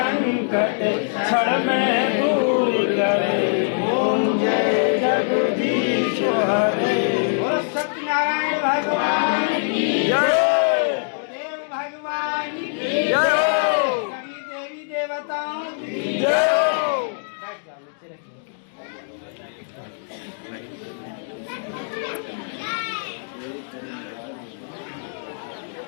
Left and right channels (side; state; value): right; silent; digital silence